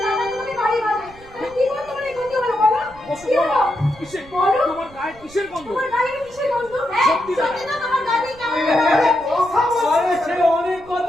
দাদা তোমাকে বাড়ি বাজে। কি করে তোমার এই ক্ষতি হলো বলো? কি হলো? কিসের বলো? তোমার গায়ে কিসের গন্ধ? তোমার গায়ে কিসের গন্ধ? হ্যাঁ সত্যি সত্যি না, তোমার গায়ে কেমন আরে সে অনেক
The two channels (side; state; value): right; noise; rumble, 22 dB below the sound